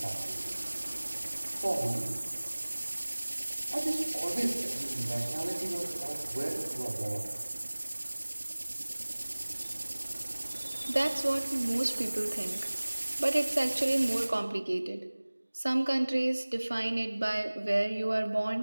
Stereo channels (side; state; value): both; inverted; correlation -1.00